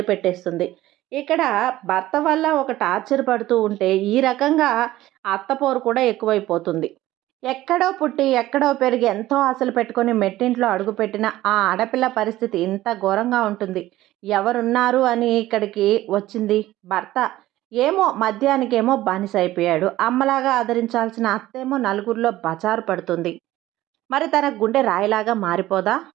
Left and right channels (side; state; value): left; quieter; 15.6 dB